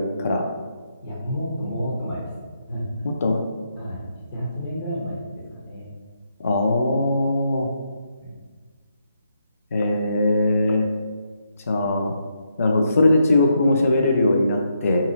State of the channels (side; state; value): both; inverted; correlation -0.79